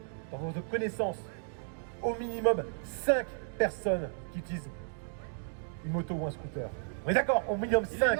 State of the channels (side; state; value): left; silent; digital silence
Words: dans vos connaissances, au minimum 5 personnes qui utilisent une moto ou un scooter. On est d'accord? Au minimum 5.